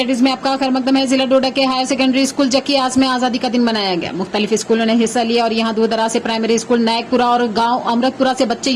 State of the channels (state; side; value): identical; both; correlation 1.00